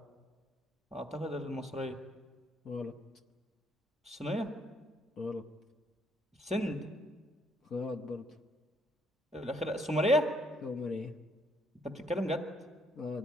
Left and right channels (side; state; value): both; normal; correlation 0.69